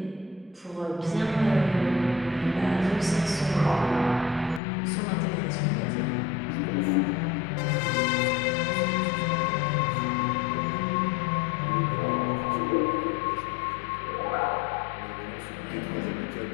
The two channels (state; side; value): drops out; right; at 4.6 s